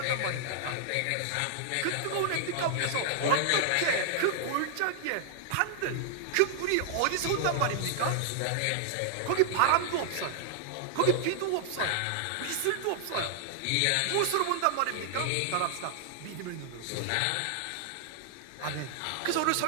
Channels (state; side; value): different; both; correlation -0.01